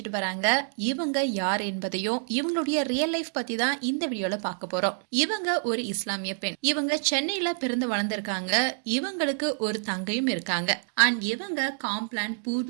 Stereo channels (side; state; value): left; silent; digital silence